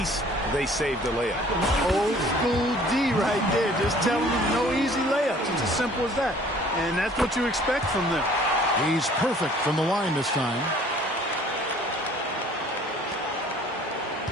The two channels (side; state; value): both; normal; correlation 0.53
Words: they saved the layup. Old school D right there. Just telling them no easy layups. It's as simple as that. And that's what you expect from them. He's perfect from the line this time.